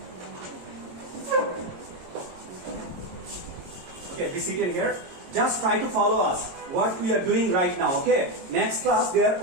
Okay, be seated here. Just try to follow us. What we are doing right now. Okay. Next class, there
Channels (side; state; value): left; late; 22 ms